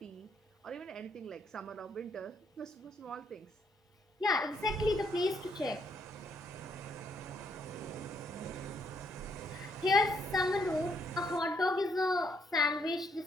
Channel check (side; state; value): both; normal; correlation 0.72